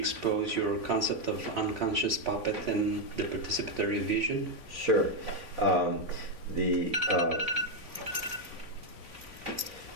your concept of unconscious puppet and the participatory vision? Sure. the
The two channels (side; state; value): left; late; 3.5 ms